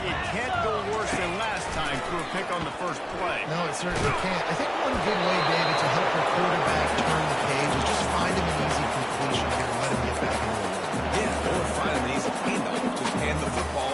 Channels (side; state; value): both; identical; correlation 1.00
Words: it can't go worse than last time through a pick on the first play. No, it certainly can't. I think one good way, David, to help your quarterback turn the page is just find him an easy completion here and let him get back into the run. Yeah, or find an easy handoff. Just hand the football